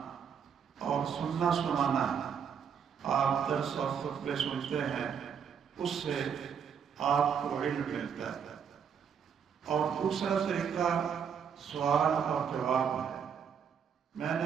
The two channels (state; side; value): quieter; left; 7.4 dB